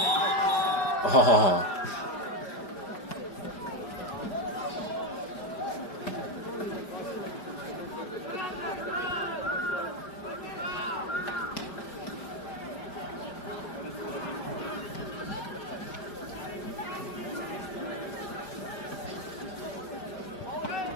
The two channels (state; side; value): late; right; 5.0 ms